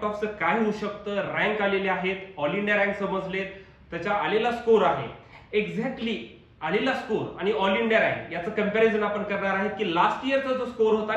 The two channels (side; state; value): both; identical; correlation 1.00